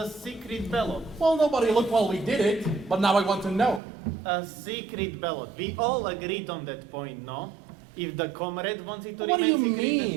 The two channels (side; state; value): left; drops out; at 3.8 s